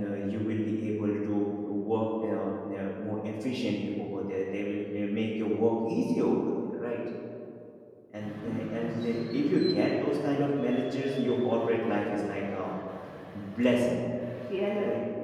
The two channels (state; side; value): identical; both; correlation 1.00